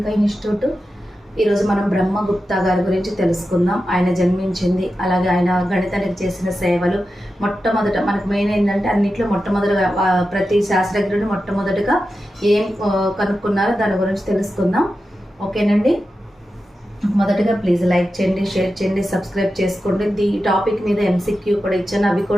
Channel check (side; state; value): both; normal; correlation 0.91